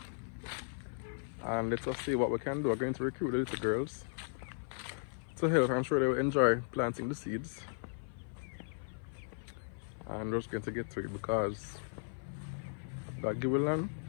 and let us see what we can do. We're going to recruit the little girls to help. I'm sure they will enjoy planting the seeds, and we're just going to get to it because God give a land,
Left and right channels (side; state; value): right; silent; 53 dB below the other